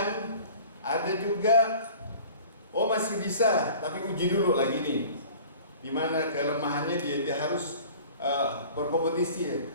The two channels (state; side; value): inverted; both; correlation -0.45